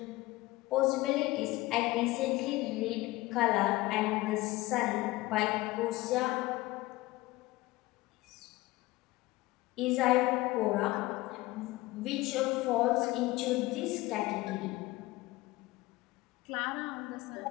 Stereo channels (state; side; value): quieter; right; 19.6 dB